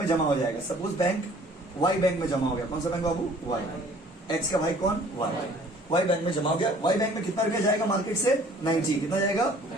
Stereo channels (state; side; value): normal; both; correlation 0.53